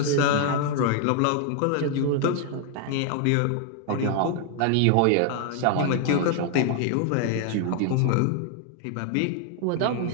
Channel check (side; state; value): both; different; correlation 0.00